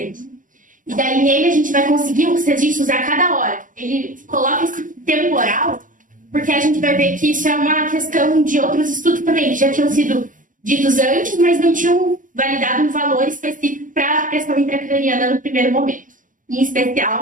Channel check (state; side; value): late; left; 0.38 ms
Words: E daí nele a gente vai conseguir os registros a cada hora. Ele coloca esse temporal, porque a gente vai ver que isso é uma questão de outros estudos também, que já tinham sido ditos antes, mas não tinham validado um valor específico para a pressão intracraniana no primeiro momento, em